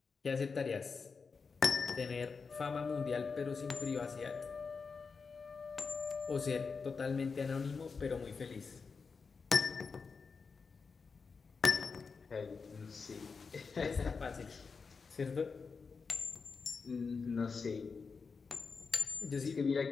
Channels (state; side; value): quieter; right; 5.0 dB